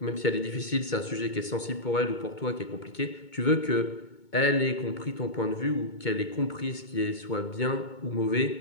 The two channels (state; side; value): late; right; 2.2 ms